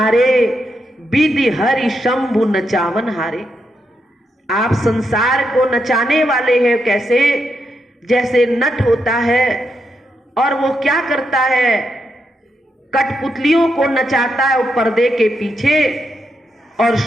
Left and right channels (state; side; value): normal; both; correlation 0.82